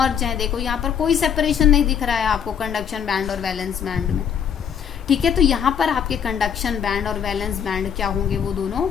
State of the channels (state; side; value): quieter; right; 8.0 dB